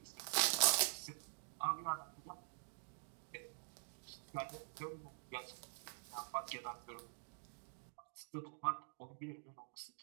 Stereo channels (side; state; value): left; silent; digital silence